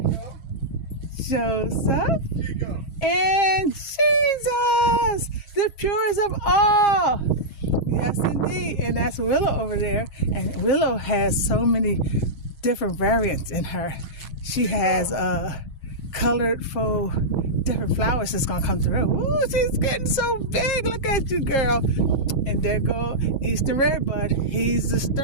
Joseph, and Jesus, the purest of all. Yes, indeed. And that's Willow over there. And Willow has so many different variants in her. She has colorful different flowers that's going to come through. Ooh, she's getting so big. Look at you, girl. And there go Eastern Redbud. He's the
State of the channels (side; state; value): right; late; 6.3 ms